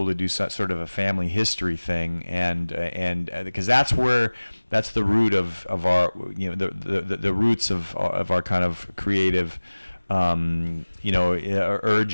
to do sort of a family history thing. And because that's the root of our, the roots of our kind of creative urges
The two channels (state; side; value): inverted; both; correlation -1.00